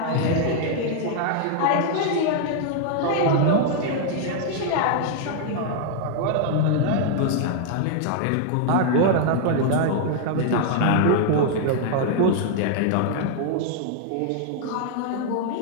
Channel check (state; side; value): different; both; correlation 0.00